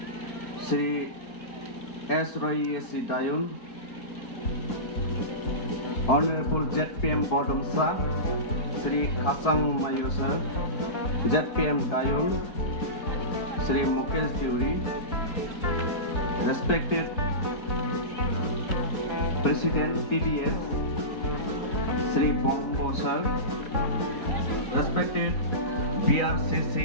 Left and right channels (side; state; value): right; late; 4.2 ms